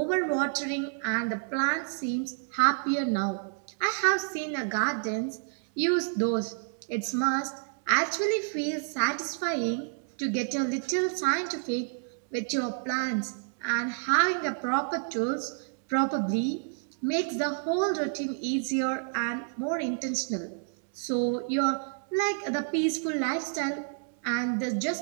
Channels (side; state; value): left; silent; 58 dB below the other